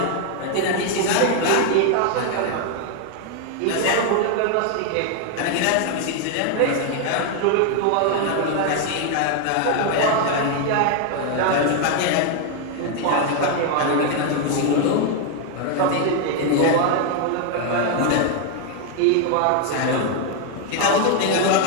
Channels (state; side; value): different; both; correlation 0.00